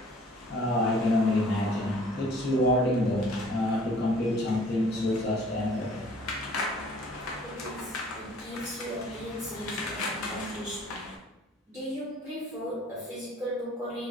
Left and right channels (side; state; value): both; normal; correlation 0.54